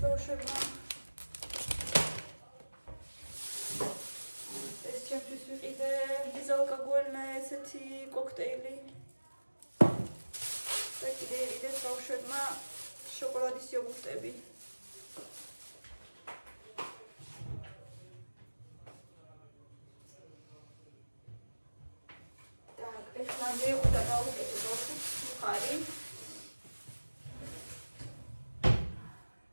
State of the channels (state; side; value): inverted; both; correlation -1.00